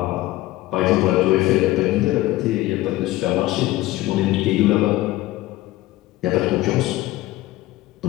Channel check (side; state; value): right; quieter; 17.1 dB